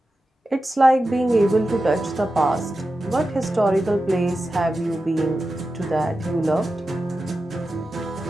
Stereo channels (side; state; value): both; normal; correlation 0.92